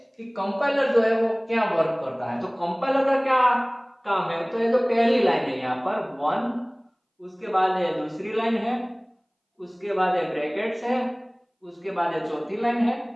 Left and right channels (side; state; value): both; identical; correlation 1.00